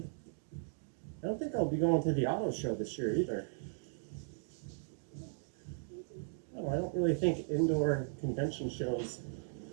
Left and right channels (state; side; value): silent; left; digital silence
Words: I don't think I'll be going to the auto show this year either. Oh, I don't really think indoor convention shows